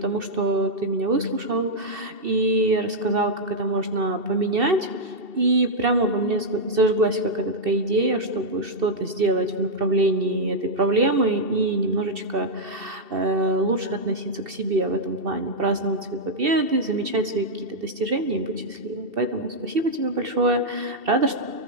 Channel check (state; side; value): late; left; 2.7 ms